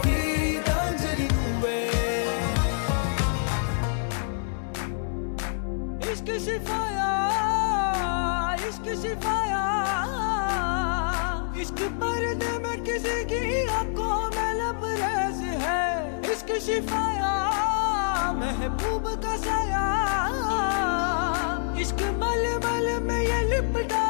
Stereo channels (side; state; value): right; silent; digital silence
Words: గీతాంజలి నువ్వే इश्क शिफाया इश्क शिफाया इश्क पर्दे में किसी की आंखों में लबरेज है इश्क शिफाया महबूब का साया इश्क मलमल में ये लिपटा